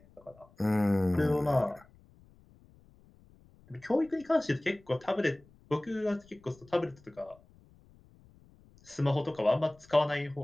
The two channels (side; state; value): left; noise; rumble, 27 dB below the sound